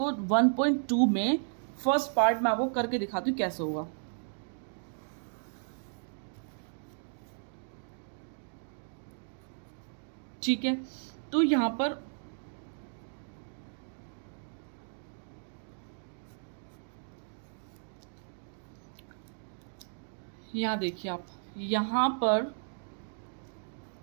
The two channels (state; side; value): silent; left; digital silence